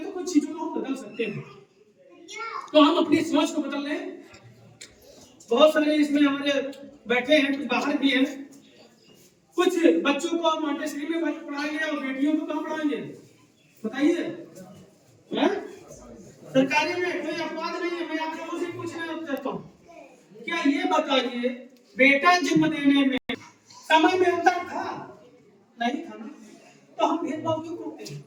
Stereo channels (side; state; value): both; identical; correlation 1.00